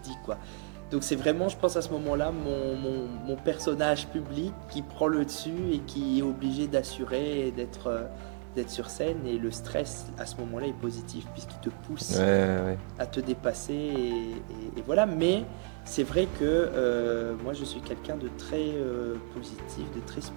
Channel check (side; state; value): left; quieter; 30.0 dB